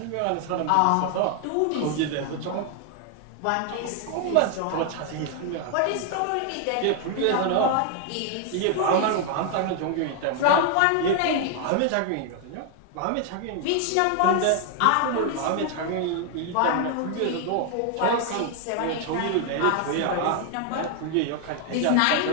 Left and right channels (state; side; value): different; both; correlation 0.00